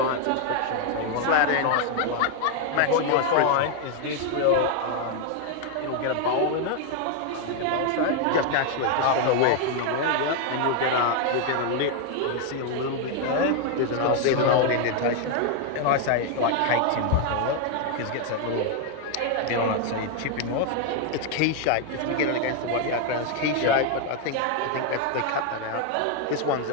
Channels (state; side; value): different; both; correlation 0.01